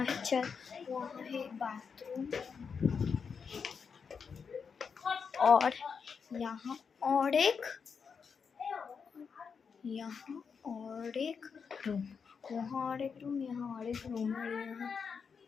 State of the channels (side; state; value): right; quieter; 6.0 dB